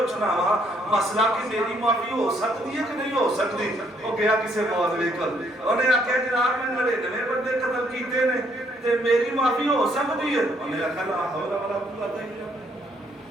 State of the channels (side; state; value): both; normal; correlation 0.69